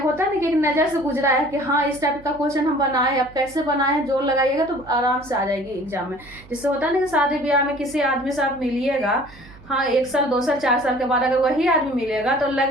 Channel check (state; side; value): noise; right; hum, 22 dB below the sound